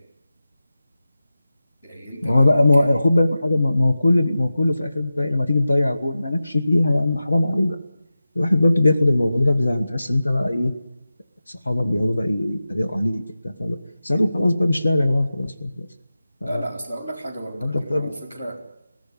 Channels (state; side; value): inverted; both; correlation -0.94